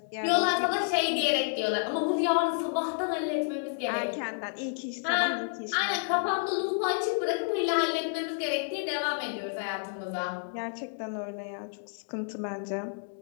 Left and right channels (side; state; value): right; silent; digital silence